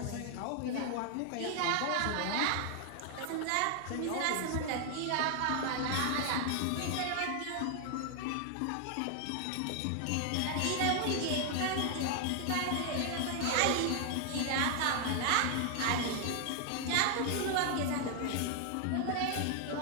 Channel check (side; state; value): both; different; correlation 0.00